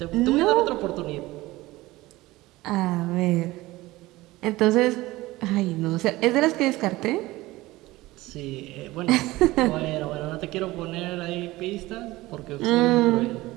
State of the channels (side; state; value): left; quieter; 18.9 dB